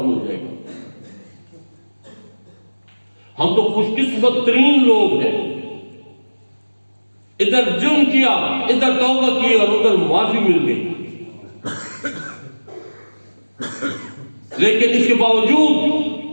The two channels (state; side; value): inverted; both; correlation -1.00